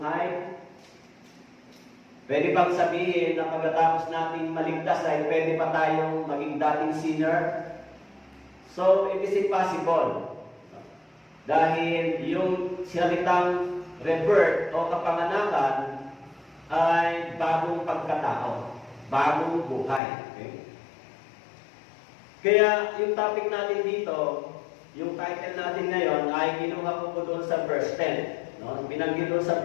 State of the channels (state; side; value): drops out; right; at 20.0 s